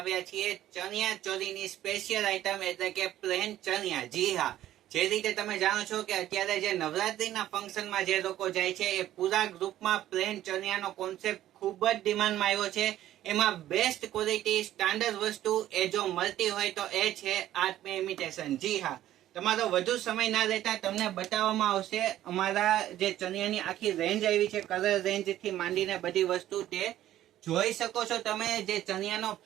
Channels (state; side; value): quieter; left; 13.1 dB